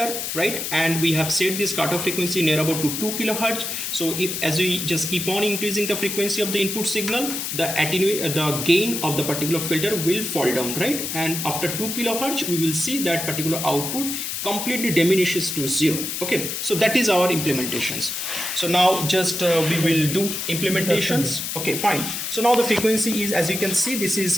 right, and we have set this cutoff frequency near about to 2 kilohertz. So if as we just keep on increasing the frequency of the input signal, the gain of the particular filter will fall down, right? And after 2 kilohertz we will see that particular output completely diminishes to 0. Okay, so that is our implementations. So now just we will do implementations. Okay, fine. So now the frequency is, as you can see, this is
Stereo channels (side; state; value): left; noise; hiss, 4 dB below the sound